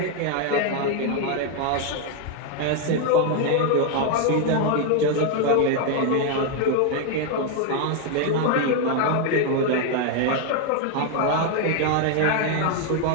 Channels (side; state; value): both; different; correlation 0.01